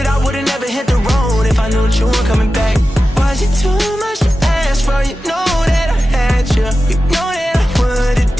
I would've never hit the road if I knew that you weren't coming back. Was it too much to ask for? You know that I had you. You know that I would've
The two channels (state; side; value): normal; both; correlation 0.93